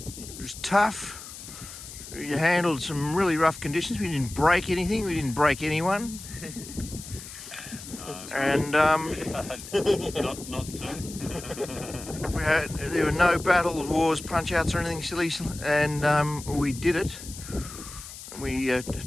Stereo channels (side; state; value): left; noise; hiss, 13 dB below the sound